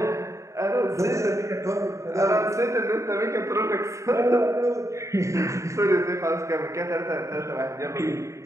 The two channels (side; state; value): left; late; 0.15 ms